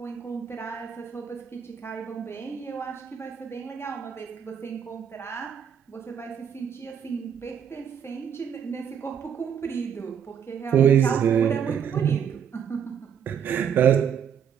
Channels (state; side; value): quieter; left; 8.0 dB